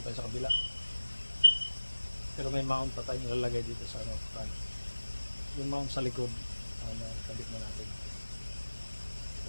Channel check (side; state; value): both; inverted; correlation -1.00